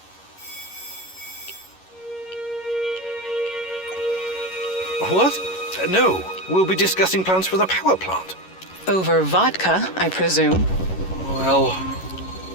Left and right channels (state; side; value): late; right; 11 ms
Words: What? No, we'll be discussing plans for the power plant. Over vodka, I presume. Well...